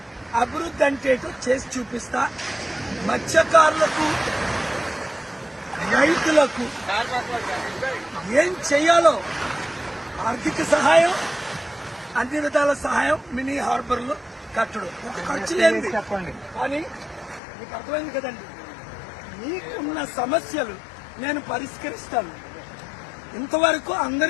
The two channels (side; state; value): right; drops out; at 17.4 s